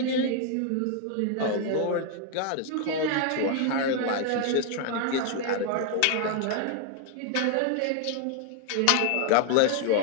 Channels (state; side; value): different; both; correlation 0.00